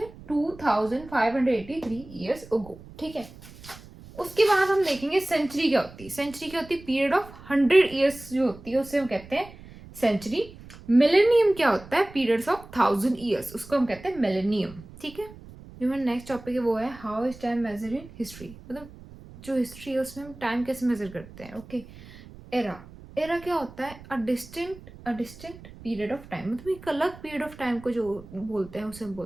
2583 ईयर्स अगो। ठीक है, उसके बाद हम देखेंगे सेंचुरी क्या होती है। सेंचुरी क्या होती है? पीरियड ऑफ 100 ईयर्स जो होती है उसे हम कहते हैं सेंचुरी। मिलेनियम क्या होता है? पीरियड्स ऑफ 1000 ईयर्स, उसको हम कहते हैं मिलेनियम। ठीक है, जो हमारा नेक्स्ट टॉपिक है वो है how is time measure in history. मतलब जो हिस्ट्री है उसमें हम टाइम कैसे मेजर करते हैं। Okay, era. एरा क्या होता है? A distinct period of time. मतलब एक अलग पीरियड ऑफ टाइम को जो बोलते हैं उसे हम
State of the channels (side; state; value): right; noise; rumble, 18 dB below the sound